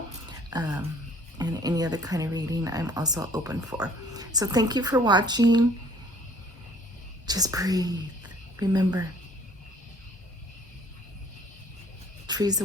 and any other kind of reading I'm also open for. So thank you for watching. Just breathe. Remember, trees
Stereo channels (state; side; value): normal; both; correlation 0.56